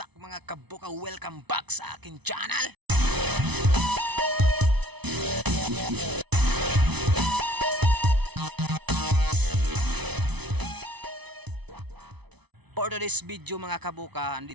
mga kabuka, welcome back sa akin channel. For today's video mga kabuka,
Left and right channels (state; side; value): late; left; 0.99 ms